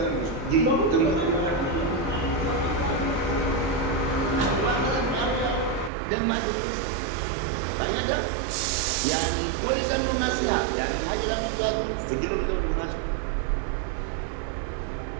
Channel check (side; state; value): left; drops out; at 5.9 s